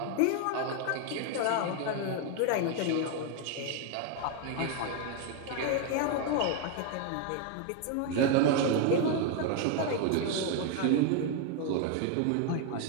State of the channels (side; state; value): both; different; correlation 0.01